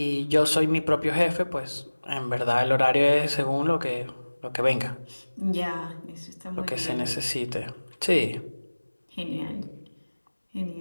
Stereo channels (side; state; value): both; inverted; correlation -1.00